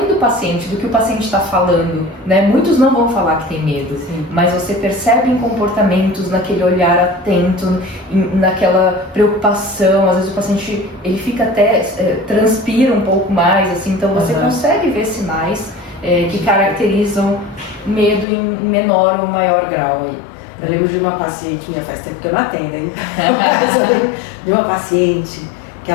do paciente, do que o paciente está falando, né? Muitos não vão falar que tem medo, mas você percebe em comportamentos, naquele olhar atento, naquela preocupação. Às vezes o paciente ele fica até transpira um pouco mais, assim. Então você consegue ver sinais que caracterizam medo em menor ou maior grau aí. Eu lembro de uma paciente minha, faz tempo que eu não atendo, hein? Mas eu lembro de uma paciente que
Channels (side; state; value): right; drops out; at 18.2 s